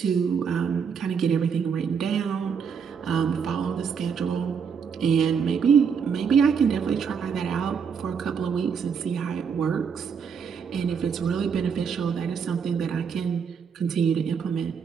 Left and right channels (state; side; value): quieter; left; 6.6 dB